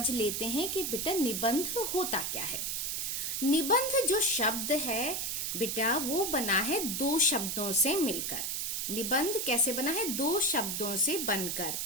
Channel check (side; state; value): right; noise; hiss, 1 dB below the sound